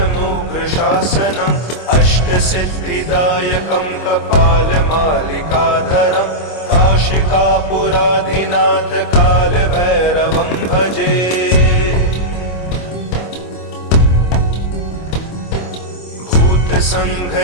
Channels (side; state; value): right; late; 25 ms